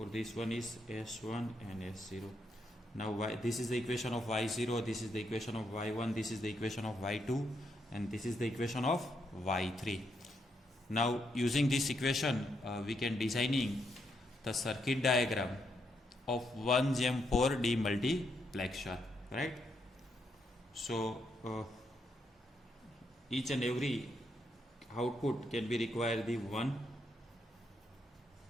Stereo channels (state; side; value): normal; both; correlation 0.78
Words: this one is S1 and S0. Now this is the equation of Y0, this is the equation of Y1, this is the equation of Y2, and this is the equation of Y3. Now using this equation we can designing the circuit diagram of 1GEM4 demultiplexer, right? So each and every output can be required the 1